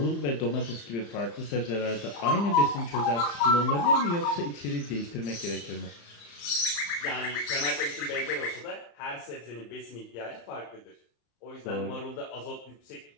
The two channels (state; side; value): late; right; 35 ms